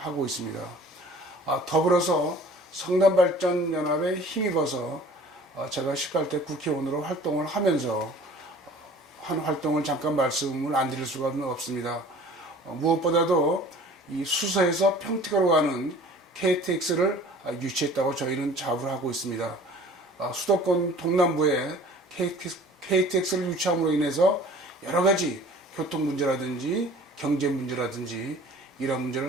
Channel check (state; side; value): normal; both; correlation 0.47